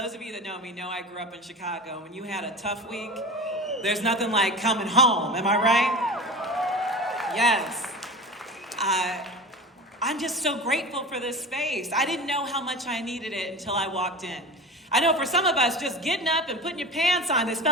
of you that know me know I grew up in Chicago. When you had a tough week, there's nothing like coming home. Am I right? Yes. I'm just so grateful for this space. I didn't know how much I needed it until I walked in. I know for some of us, just getting up and putting your pants on has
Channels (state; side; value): normal; both; correlation 0.31